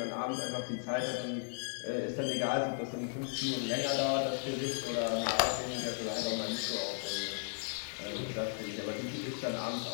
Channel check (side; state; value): right; silent; digital silence